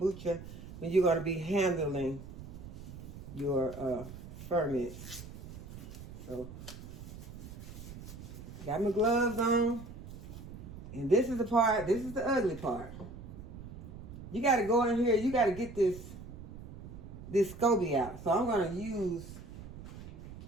when you're going to be handling your ferments. So, got my gloves on. And this is the part, this is the ugly part. You got to go in here, you got to get this SCOBY out. So I'm going to use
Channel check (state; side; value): noise; right; rumble, 13 dB below the sound